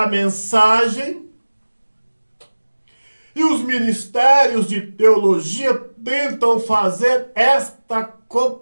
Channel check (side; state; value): both; inverted; correlation -1.00